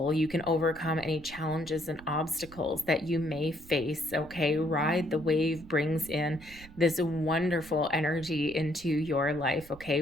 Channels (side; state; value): right; noise; rumble, 20 dB below the sound